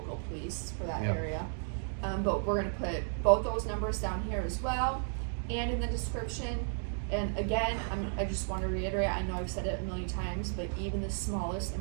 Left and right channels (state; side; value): silent; left; digital silence